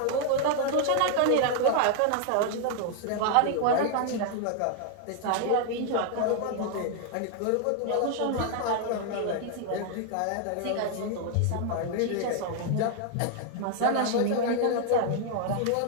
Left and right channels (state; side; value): different; both; correlation 0.00